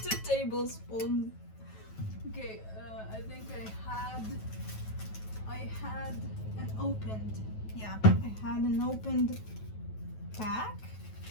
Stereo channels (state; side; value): late; right; 9.2 ms